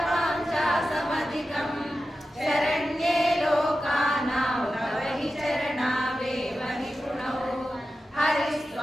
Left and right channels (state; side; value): normal; both; correlation 0.92